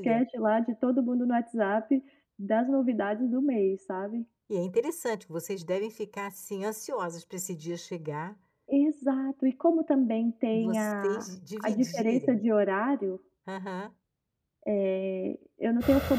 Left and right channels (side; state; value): both; identical; correlation 1.00